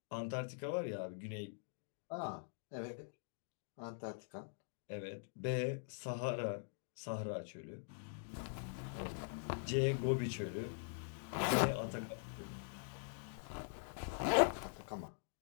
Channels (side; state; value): right; silent; digital silence